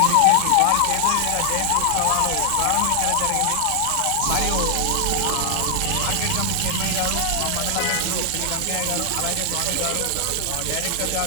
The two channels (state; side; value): different; both; correlation 0.00